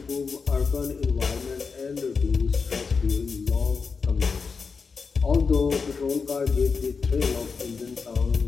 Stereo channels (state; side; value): quieter; right; 5.1 dB